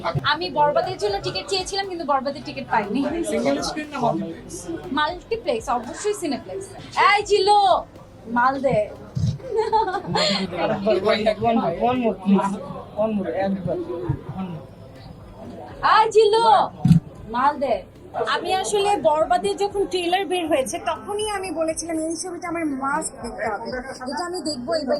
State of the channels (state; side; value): identical; both; correlation 1.00